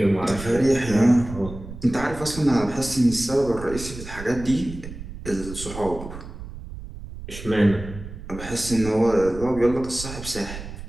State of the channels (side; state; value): right; noise; rumble, 12 dB below the sound